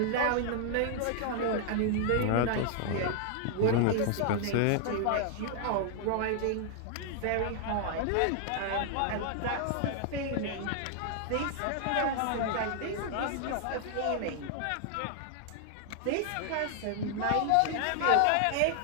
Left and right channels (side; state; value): both; different; correlation -0.01